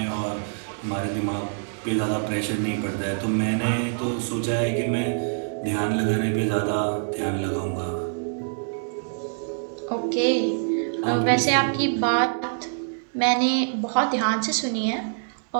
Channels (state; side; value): silent; left; digital silence